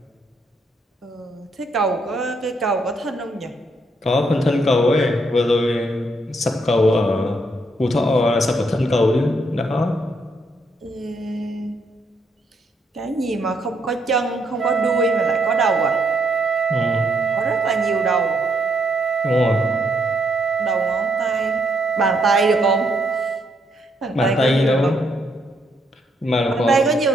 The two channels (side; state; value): both; normal; correlation 0.74